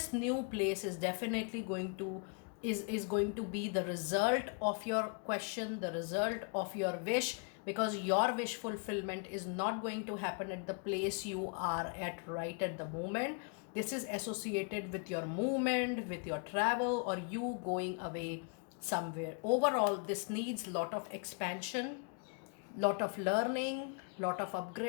new place is definitely going to is going to be the result of your question, the result of your wish, because your wish fulfillment is not going to happen at the place you are at right at the moment. This is associated with your movement, with your travel, or you going away somewhere. Overall, this needs lot of expansion, lot of learning, lot of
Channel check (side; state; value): right; quieter; 37.3 dB